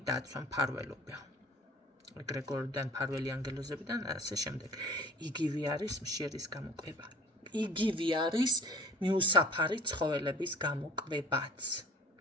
დაცვა, მფარველობა. ეგრეგორიდან, მფარველი ანგელოზებიდან და ასე შემდეგ. იგივე არის მშერის გამოკვება. იგივე არის მიუსაფარი ცხოველების გამოკვებაც.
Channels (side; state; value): both; normal; correlation 0.47